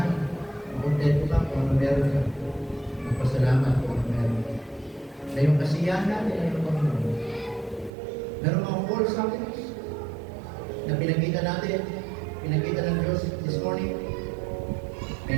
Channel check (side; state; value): left; drops out; at 7.9 s